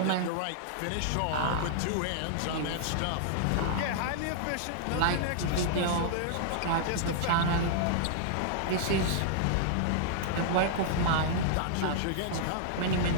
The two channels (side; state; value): both; different; correlation -0.01